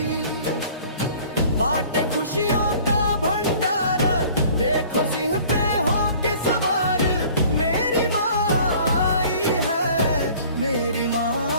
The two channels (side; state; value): both; inverted; correlation -0.50